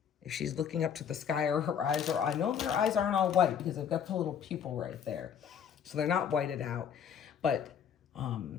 if she's looking up to the sky or her eyes are. I know their eyes aren't all white because they've got the little pupil right there. So they're not whited out. But,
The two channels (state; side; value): quieter; right; 8.0 dB